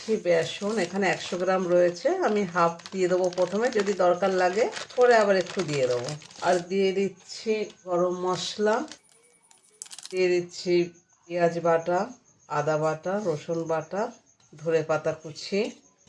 বেসন। এখানে 100 গ্রাম রয়েছে, আমি হাফ দিয়ে দেবো প্রথমে, যদি দরকার লাগে পরে আবার একটু দিয়ে দেবো। আর দিয়ে দিচ্ছি গরম মশলা, দিয়ে দিচ্ছি পেঁয়াজ বাটা, আদা বাটা, রসুন বাটা, ধনেপাতা কুচি,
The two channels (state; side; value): identical; both; correlation 1.00